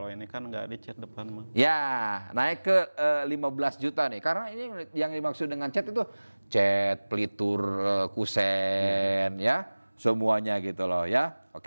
ini kan nggak dicat depan mah. ya, naik ke 15 juta nih. Karena ini yang dimaksud dengan cat itu cat, pelitur, kusen, ya. Semuanya gitu loh ya.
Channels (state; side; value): inverted; both; correlation -1.00